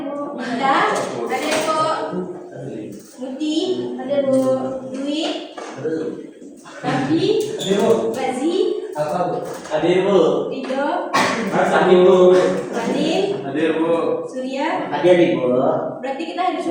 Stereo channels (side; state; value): both; identical; correlation 1.00